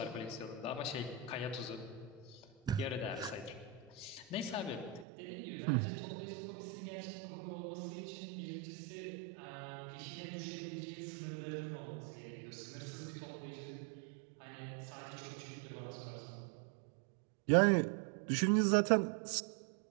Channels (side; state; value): left; drops out; at 5.1 s